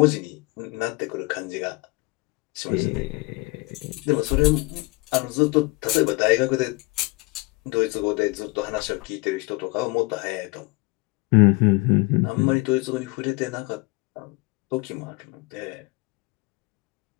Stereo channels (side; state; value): right; quieter; 25.6 dB